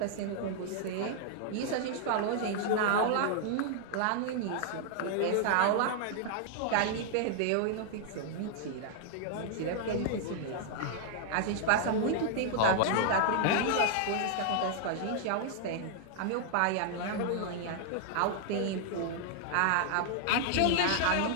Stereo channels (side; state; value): both; different; correlation -0.01